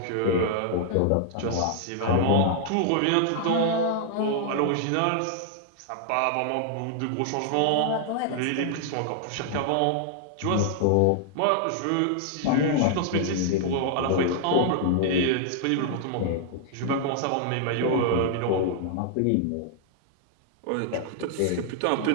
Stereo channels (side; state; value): both; different; correlation -0.01